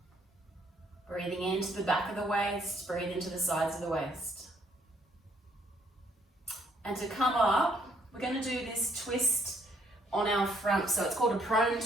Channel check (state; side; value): normal; both; correlation 0.67